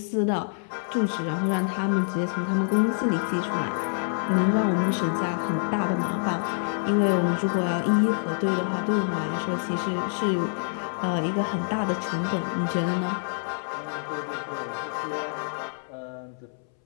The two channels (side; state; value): right; silent; 61 dB below the other